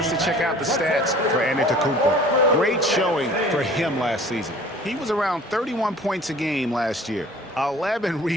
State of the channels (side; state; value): both; normal; correlation 0.48